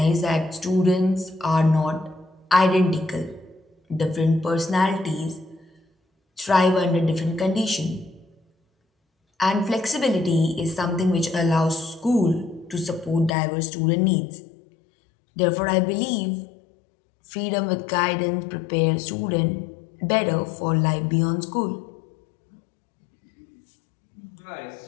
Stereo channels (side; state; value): right; drops out; at 13.3 s